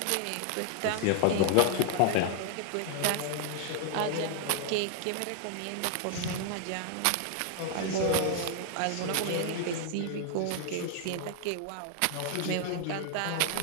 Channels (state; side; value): different; both; correlation 0.00